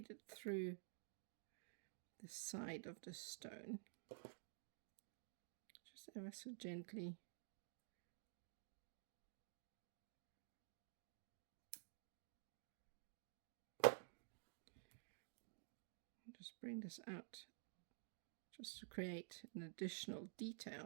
it through the side of the stone, just ever so gently. just bring this out just to create an additional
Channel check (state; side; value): silent; left; digital silence